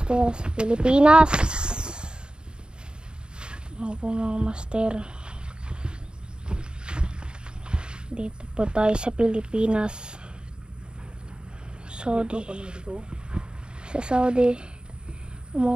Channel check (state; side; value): late; left; 0.049 ms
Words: Sa Pilipinas. Opo mga master. Dito po tayo sa Pilipinas. Saudi. Sa Saudi.